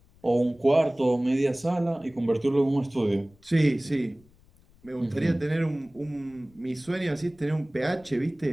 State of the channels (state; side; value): noise; left; rumble, 29 dB below the sound